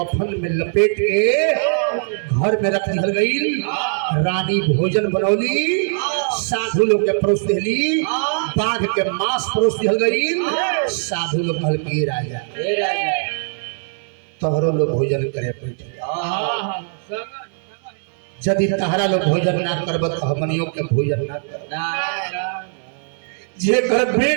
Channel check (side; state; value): left; silent; digital silence